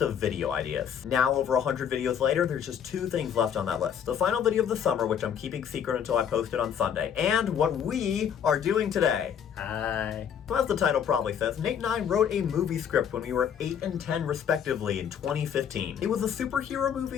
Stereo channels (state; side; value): quieter; right; 8.4 dB